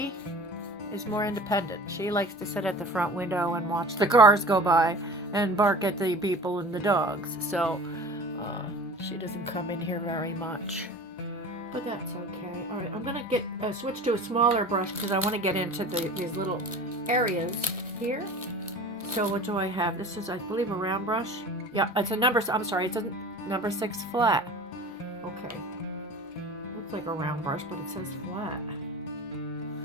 is more independent. She likes to sit at the front window and watch the cars go by and bark at the people and the dogs, so she doesn't come in here very much, but that's okay. All right, I'm gonna switch to a smaller brush because I want to get into these little areas here. So what do I have? This is, I believe, a round brush. Yeah, it's a number, I'm sorry, it's a number 6 flat. Okay. Looks like a round brush, but it says flat.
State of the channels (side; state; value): both; normal; correlation 0.39